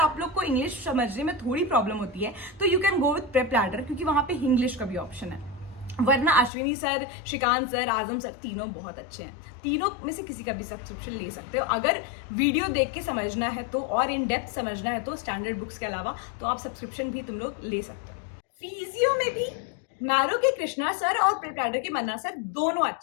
लोग को इंग्लिश समझने में थोड़ी प्रॉब्लम होती है तो you can go with prep ladder, क्योंकि वहां पे इंग्लिश का भी ऑप्शन है। वरना अश्विनी सर, श्रीकांत सर, आजम सर तीनों बहुत अच्छे हैं। तीनों में से किसी का भी सब्सक्रिप्शन ले सकते हो अगर वीडियो देख के समझना है तो, और इन डेप्थ समझना है तो स्टैंडर्ड बुक्स के अलावा, तो आप सब्सक्रिप्शन भी तुम लोग ले सकते हो। फिजियो में भी मैरो के कृष्णा सर और प्रिपैडर के मन्ना सर दोनों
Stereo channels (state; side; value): drops out; right; at 6.5 s